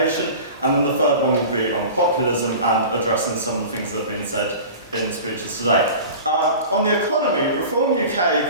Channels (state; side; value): inverted; both; correlation -0.37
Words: and then the third one will be on populism and addressing some of the things that have been said in the speeches today. On the economy, Reform UK